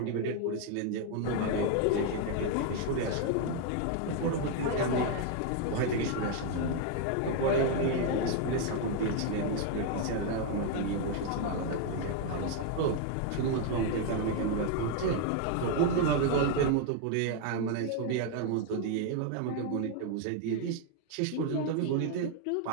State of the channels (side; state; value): both; different; correlation 0.01